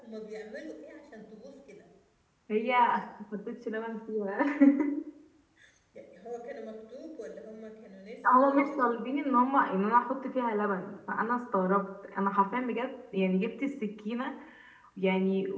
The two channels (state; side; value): identical; both; correlation 1.00